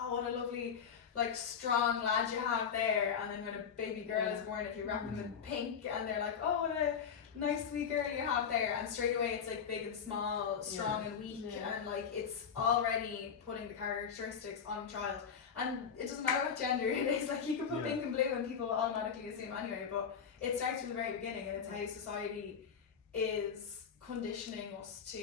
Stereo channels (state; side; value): quieter; right; 7.0 dB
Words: what a lovely like strong lad you have there. And then when a baby girl is born, if you wrap them in pink, and they're like, oh, what a nice sweet girl you have there. And straight away it's like big and small, strong and weak, and like it's already putting the characteristics on a child. And it doesn't matter what gender it is, like you can put pink and blue and people will automatically assume anyway, but it starts from the very beginning, and it's how society is conditioning us